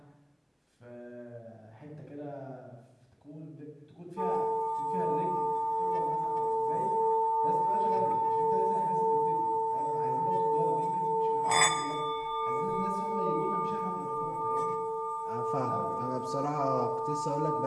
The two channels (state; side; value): identical; both; correlation 1.00